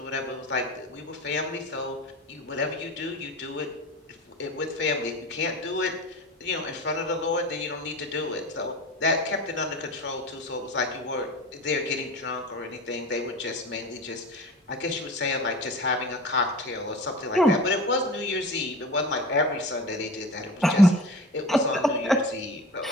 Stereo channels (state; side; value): normal; both; correlation 0.34